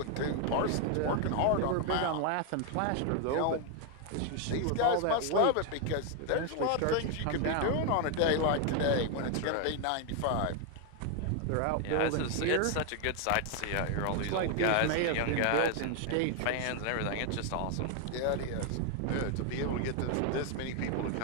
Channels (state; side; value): different; both; correlation 0.00